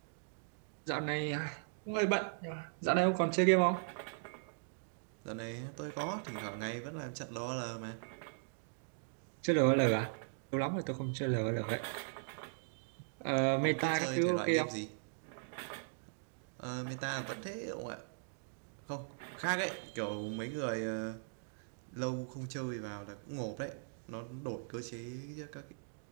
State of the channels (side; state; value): left; silent; digital silence